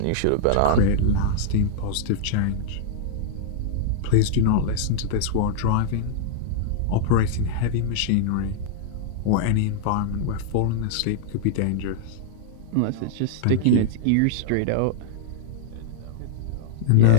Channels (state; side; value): different; both; correlation -0.02